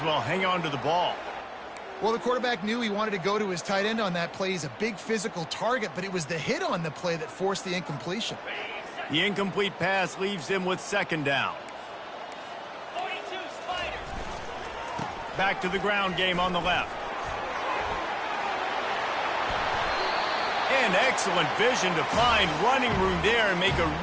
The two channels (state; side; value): identical; both; correlation 1.00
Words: well hang on to the ball. Well, the quarterback knew he wanted to go to his tight end on that play. He's a big physical target, but it was the hit on the play that forced the incompletion. The incomplete pass leaves him with second down. Back to the ground game on the left. And excellent vision to find running room there and make a